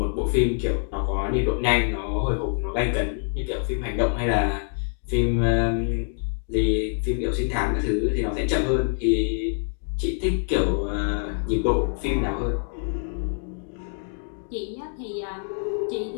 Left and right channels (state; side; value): silent; right; 62 dB below the other